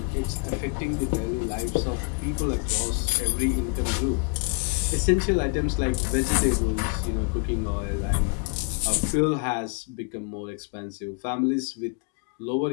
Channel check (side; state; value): right; quieter; 35.4 dB